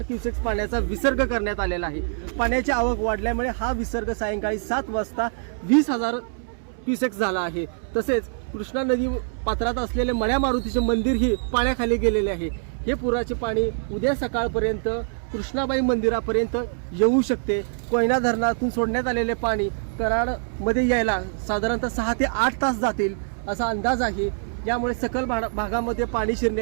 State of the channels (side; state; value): left; silent; 62 dB below the other